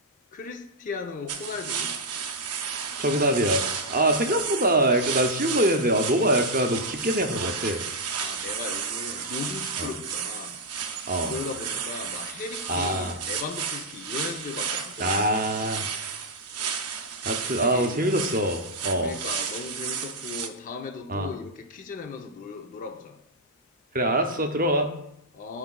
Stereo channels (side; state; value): both; normal; correlation -0.05